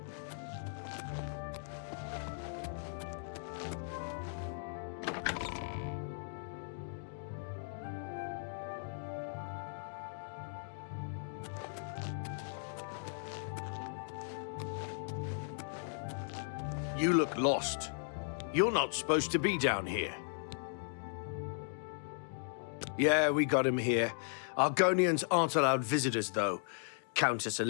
You look lost. You're not supposed to be down here. Yeah, we got him here. Argonians aren't allowed visitors, though. Countess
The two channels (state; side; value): silent; right; digital silence